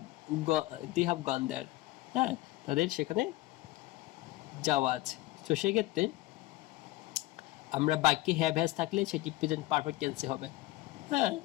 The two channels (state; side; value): quieter; right; 18.6 dB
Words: গন দেয়ার, হ্যাঁ, তাদের সেখানে যাওয়া আছে। তো সেক্ষেত্রে আমরা বাক্যে হ্যাভ হ্যাজ থাকলে সেটি প্রেজেন্ট পারফেক্ট টেন্সে হবে, হ্যাঁ,